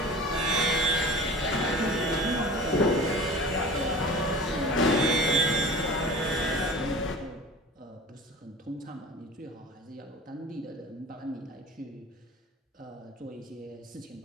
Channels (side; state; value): both; normal; correlation 0.38